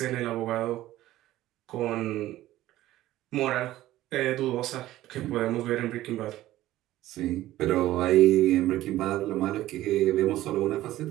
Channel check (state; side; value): quieter; left; 15.2 dB